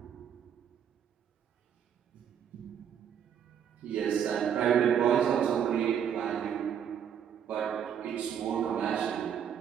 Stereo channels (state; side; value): quieter; left; 8.6 dB